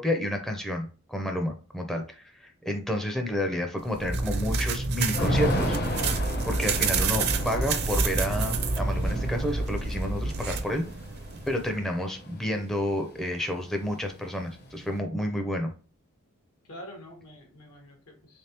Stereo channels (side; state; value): both; normal; correlation 0.63